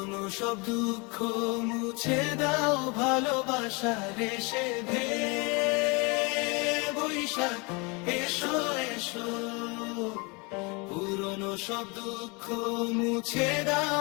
সব দুঃখ মুছে দাও ভালোবাসার রেশে। হে বৈশাখ, এসো এসো, পুরনো সব দুঃখ মুছে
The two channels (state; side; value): quieter; right; 29.3 dB